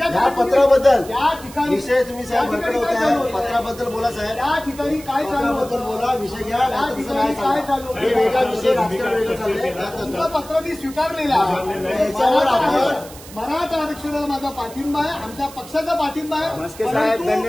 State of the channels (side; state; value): right; noise; hiss, 18 dB below the sound